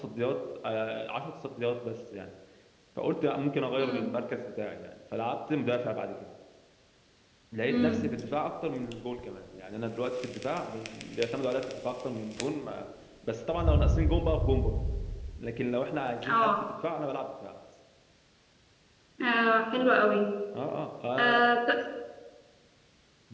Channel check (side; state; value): both; identical; correlation 1.00